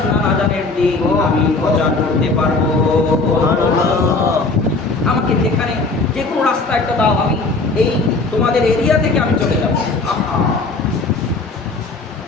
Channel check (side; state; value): right; quieter; 3.7 dB